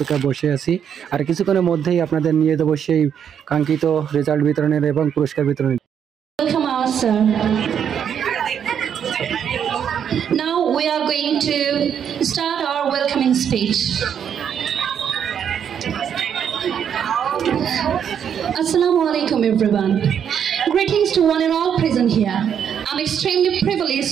বসে আছি, আর কিছুক্ষণের মধ্যেই আপনাদের নিয়ে দেবো সেই কাঙ্ক্ষিত রেজাল্ট বিতরণের এবং পুরস্কার বিতরণের। Now we are going to start our welcoming speech. Assalamu alaikum everyone. Greetings to one and all present here. I'm extremely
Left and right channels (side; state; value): left; quieter; 8.3 dB